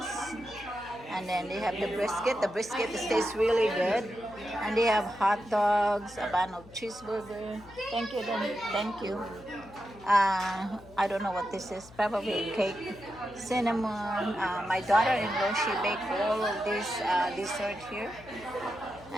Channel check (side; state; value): left; noise; hum, 21 dB below the sound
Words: and then they have the brisket. The brisket tastes really good. And they have hot dogs, a bun of cheeseburger. Thank you, then. Thank you. I don't know what this is. Probably cake, cinnamon. My daughter-in-law, she baked all of this dessert here.